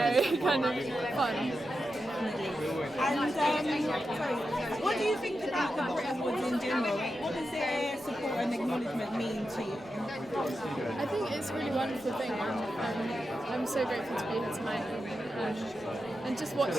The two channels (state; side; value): normal; both; correlation 0.89